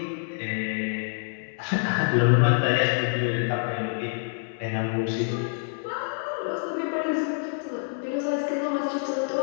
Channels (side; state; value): right; silent; 60 dB below the other